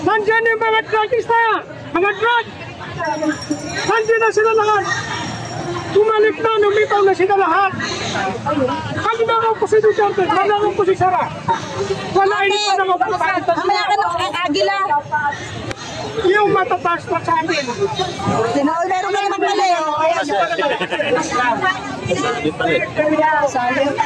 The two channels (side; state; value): both; identical; correlation 1.00